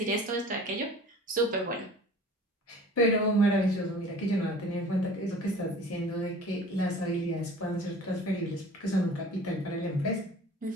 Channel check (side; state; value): both; normal; correlation 0.45